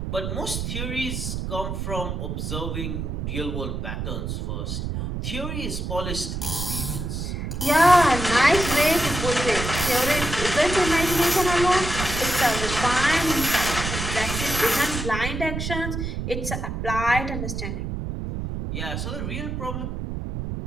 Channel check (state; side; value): noise; right; rumble, 4 dB below the sound